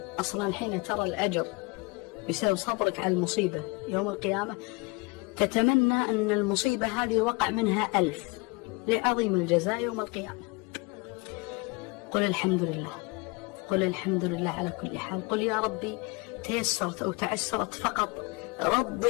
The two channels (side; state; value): right; quieter; 27.7 dB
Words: أصلا حين ترى الأجر بسبب صبرك على المصيبة يوم القيامة تتمنى أن المصيبة هذه وقع منها 1000 لعظيم الجزاء يوم القيامة. قل الحمد لله، قل الحمد لله على كل حال. قل يا ربي تيسرت أو تعسرت فقط